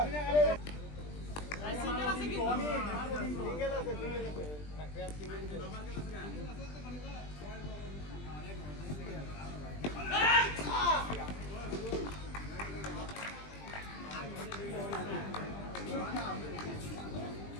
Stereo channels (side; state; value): right; late; 20 ms